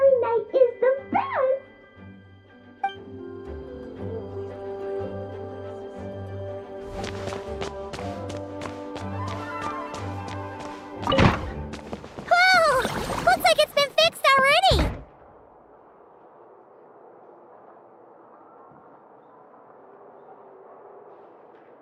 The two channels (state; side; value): identical; both; correlation 1.00